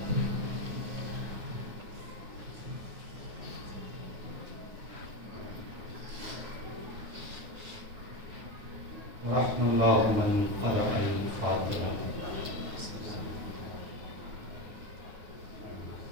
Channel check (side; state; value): left; late; 9.4 ms